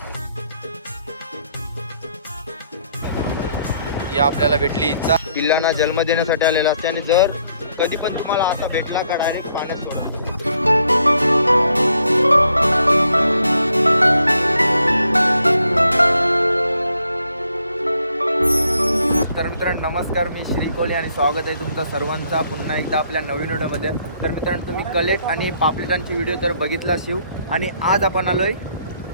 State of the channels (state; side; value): inverted; both; correlation -0.70